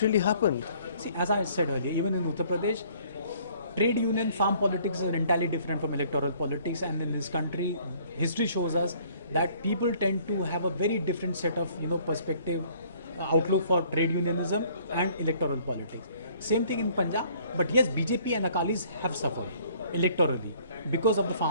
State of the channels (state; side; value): inverted; both; correlation -0.58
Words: really happened? See, as I said earlier, even in Uttar Pradesh, trade union farm politics is entirely different from electoral politics, and in this country, history shows us that people tend to have a very different set of perspective, outlook for trade unionism and electoral politics. Same thing in Punjab, but yes, BJP and Akalis have suffered electorally because of the